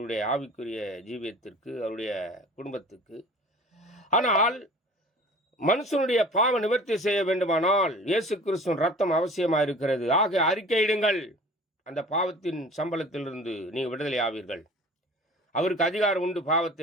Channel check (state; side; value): normal; both; correlation 0.43